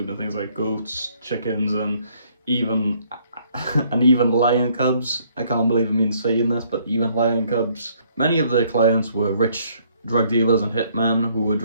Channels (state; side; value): inverted; both; correlation -0.65